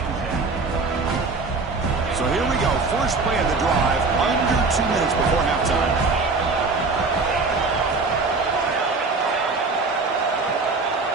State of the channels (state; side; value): quieter; left; 4.0 dB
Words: So here we go. First play of the drive, under 2 minutes before halftime.